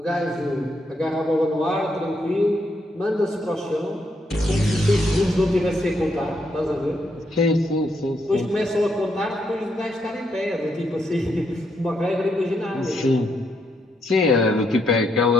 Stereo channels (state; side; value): normal; both; correlation 0.77